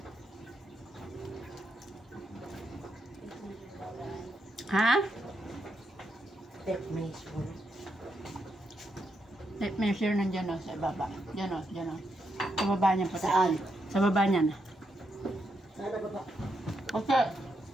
Ha? Tape measure. Tape measure nandiyan o, sa baba. Diyan o, diyan o. Sa baba niyan po. Saan? Sa baba niyan. Saan na baba? Okay.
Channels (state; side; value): normal; both; correlation 0.81